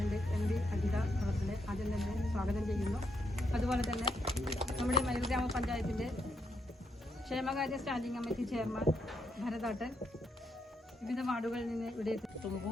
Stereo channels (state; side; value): normal; both; correlation 0.78